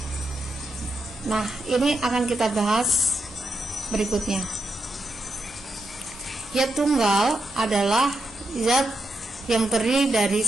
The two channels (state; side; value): normal; both; correlation 0.84